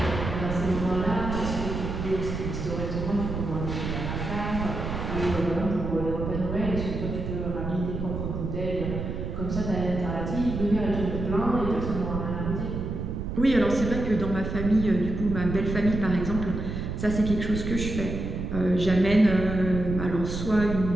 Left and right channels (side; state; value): right; noise; rumble, 4 dB below the sound